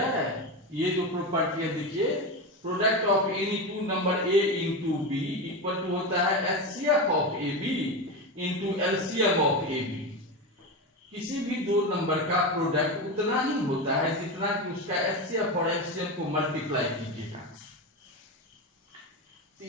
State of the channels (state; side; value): normal; both; correlation 0.18